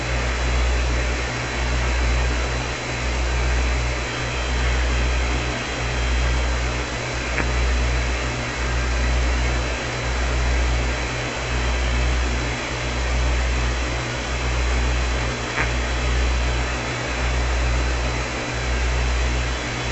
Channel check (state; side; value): identical; both; correlation 1.00